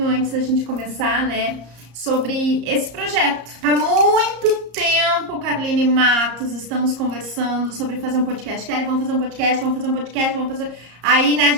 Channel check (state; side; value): late; left; 34 ms